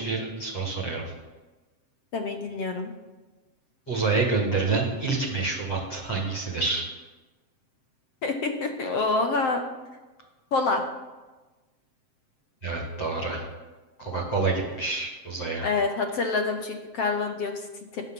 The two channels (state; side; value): late; right; 7.7 ms